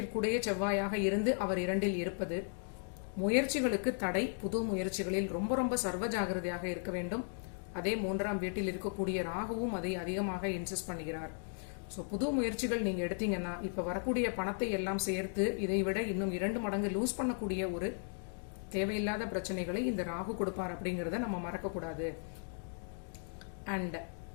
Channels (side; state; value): right; silent; 54 dB below the other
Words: செவ்வாயாக இருந்து அவர் 2இல் இருப்பது முயற்சிகளுக்கு தடை. புது முயற்சிகளில் ரொம்ப ரொம்ப சர்வ ஜாகிரதையாக இருக்க வேண்டும். அதே 3ஆம் வீட்டில் இருக்கக்கூடிய ராகுவும் அதை அதிகமாக இன்சிஸ்ட் பண்ணுகிறார். ஸோ புது முயற்சிகள் நீங்க எடுத்தீங்கன்னா இப்ப வரக்கூடிய பணத்தை எல்லாம் சேர்த்து இதை விட இன்னும் 2 மடங்கு லூஸ் பண்ணக்கூடிய ஒரு தேவையில்லாத பிரச்சனைகளை இந்த ராகு கொடுப்பார் அப்படிங்கறத நம்ம மறக்கக்கூடாது. அண்ட்